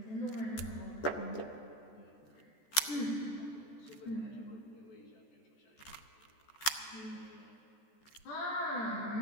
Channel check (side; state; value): right; late; 14 ms